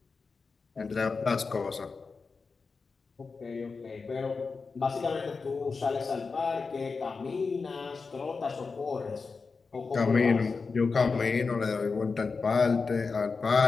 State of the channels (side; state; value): right; quieter; 4.6 dB